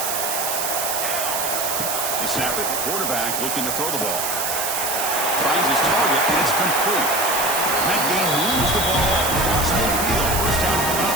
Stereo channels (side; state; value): right; noise; hiss, 1 dB below the sound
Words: They snap it, quarterback looking to throw the ball. Finds his target, and it's complete. That game moves the ball across midfield. First down coming up